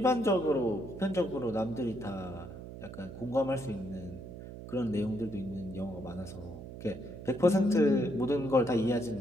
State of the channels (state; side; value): noise; right; hum, 12 dB below the sound